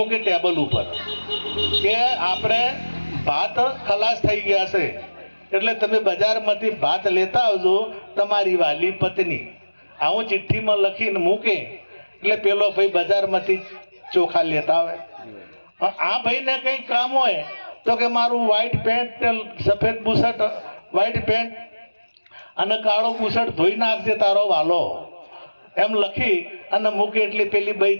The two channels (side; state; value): both; inverted; correlation -1.00